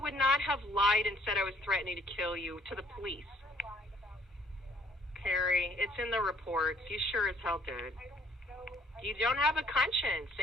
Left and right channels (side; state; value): both; normal; correlation 0.61